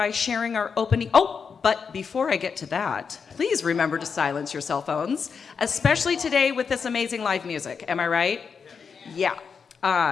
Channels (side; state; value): right; quieter; 6.0 dB